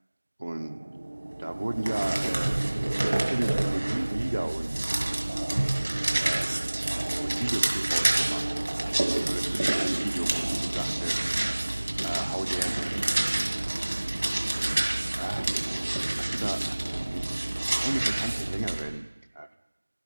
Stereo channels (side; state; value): both; inverted; correlation -1.00